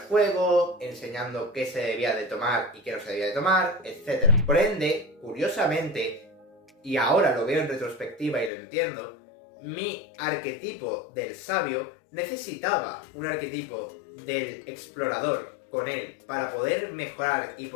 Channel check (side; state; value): right; drops out; at 8.5 s